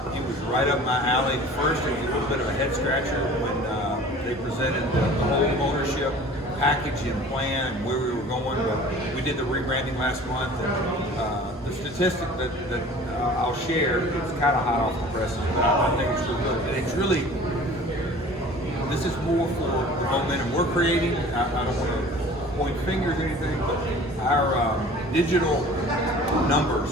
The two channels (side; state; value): both; normal; correlation 0.45